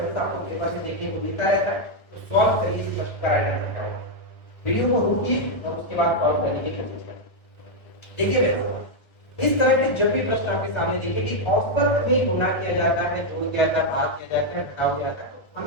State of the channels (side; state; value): right; late; 1.1 ms